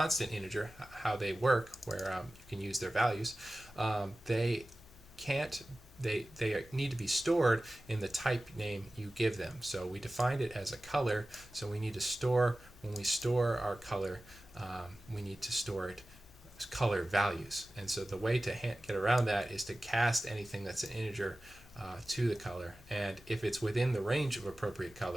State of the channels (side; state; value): left; noise; hum, 23 dB below the sound